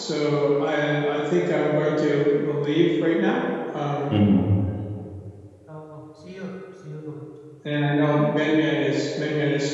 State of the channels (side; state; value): both; identical; correlation 1.00